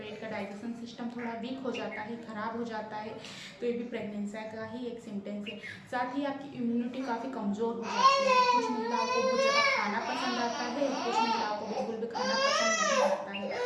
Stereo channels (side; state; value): both; identical; correlation 1.00